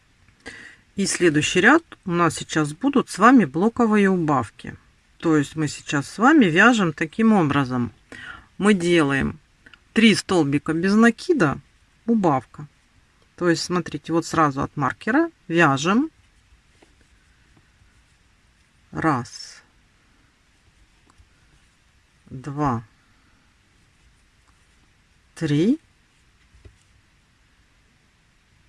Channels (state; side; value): identical; both; correlation 1.00